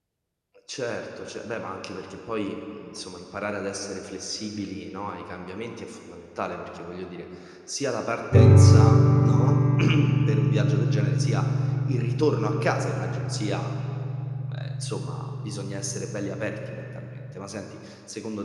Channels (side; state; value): both; identical; correlation 1.00